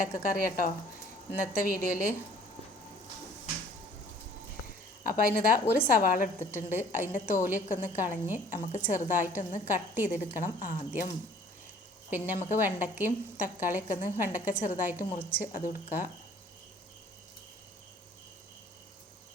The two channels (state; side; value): normal; both; correlation 0.54